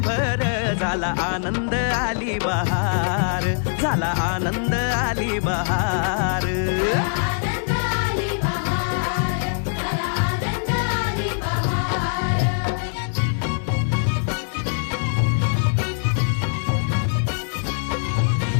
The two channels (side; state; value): right; silent; digital silence